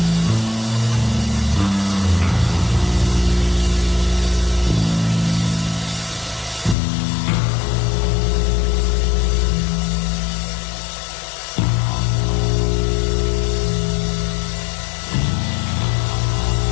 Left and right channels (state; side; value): drops out; right; at 6.8 s